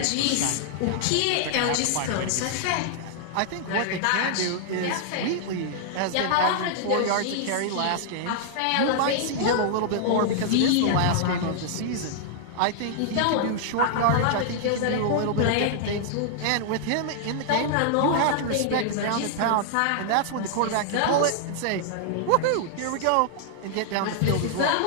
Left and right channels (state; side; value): different; both; correlation -0.01